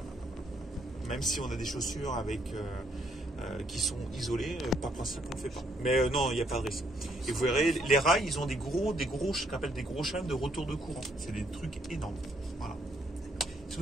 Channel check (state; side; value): normal; both; correlation 0.70